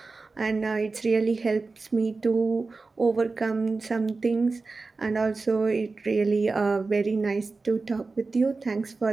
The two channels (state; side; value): quieter; left; 3.9 dB